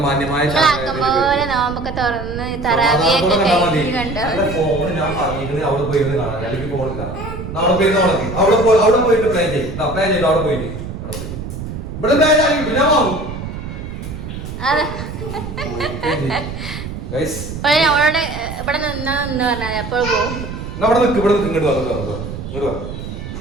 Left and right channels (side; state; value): right; noise; rumble, 8 dB below the sound